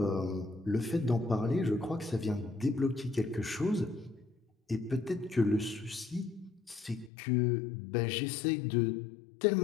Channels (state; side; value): drops out; right; at 7.1 s